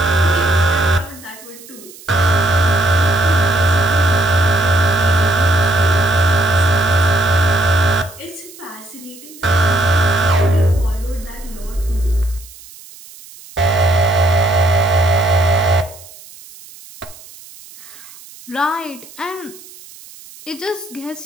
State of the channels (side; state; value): right; noise; hiss, 20 dB below the sound